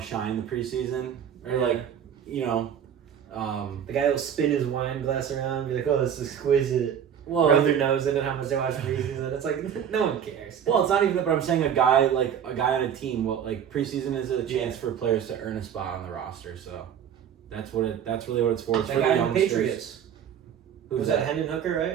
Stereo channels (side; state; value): left; quieter; 8.7 dB